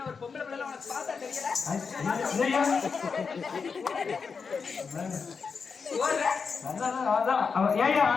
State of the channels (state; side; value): quieter; right; 5.4 dB